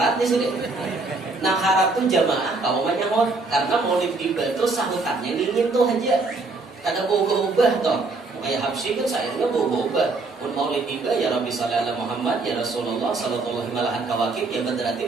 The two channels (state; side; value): quieter; left; 3.6 dB